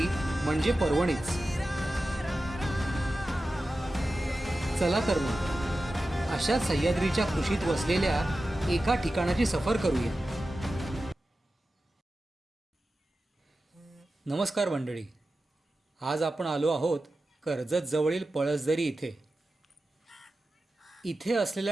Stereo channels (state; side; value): normal; both; correlation 0.93